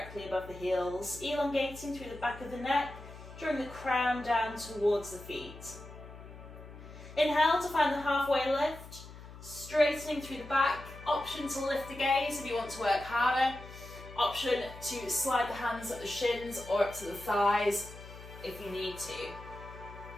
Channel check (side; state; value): left; noise; hum, 15 dB below the sound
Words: above the heels, elongating through the back of the neck, drawing the crown down towards the feet. Inhale to find the halfway lift, straightening through the back. Option to lift the gaze if you want to work harder. Option to slide the hands up the shins or up to the thighs if you need to.